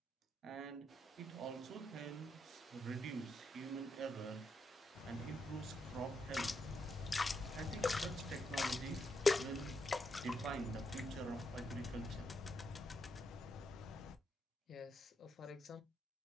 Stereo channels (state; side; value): normal; both; correlation 0.81